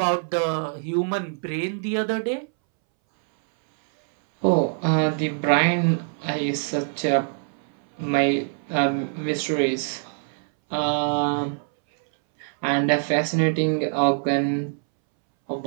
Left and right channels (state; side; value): silent; left; 63 dB below the other